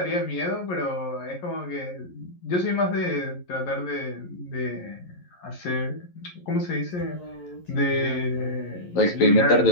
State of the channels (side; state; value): right; late; 11 ms